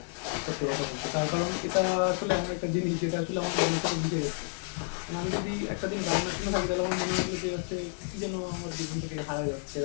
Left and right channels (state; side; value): silent; right; 57 dB below the other